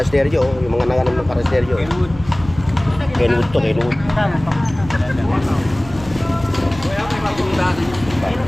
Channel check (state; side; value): noise; right; hum, 16 dB below the sound